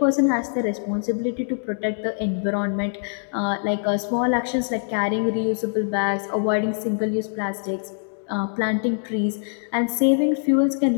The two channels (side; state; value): right; silent; digital silence